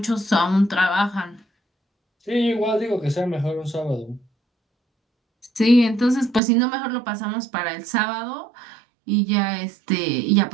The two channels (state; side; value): drops out; left; at 6.4 s